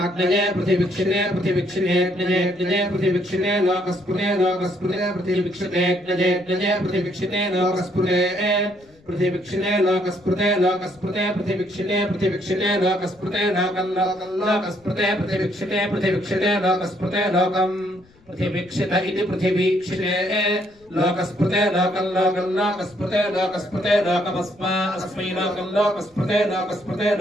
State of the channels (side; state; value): left; noise; rumble, 30 dB below the sound